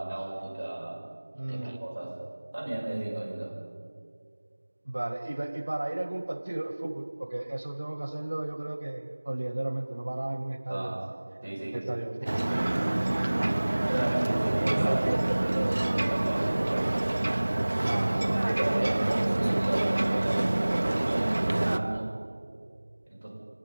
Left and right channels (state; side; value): inverted; both; correlation -1.00